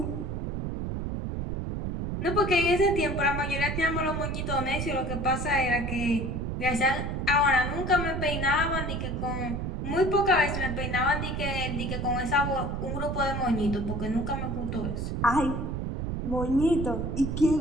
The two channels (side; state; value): right; noise; rumble, 3 dB below the sound